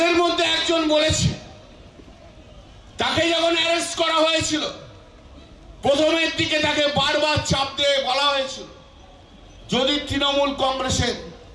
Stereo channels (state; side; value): identical; both; correlation 1.00